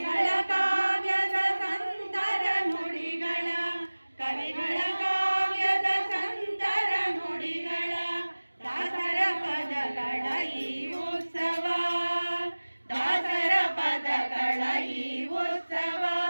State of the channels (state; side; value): inverted; both; correlation -1.00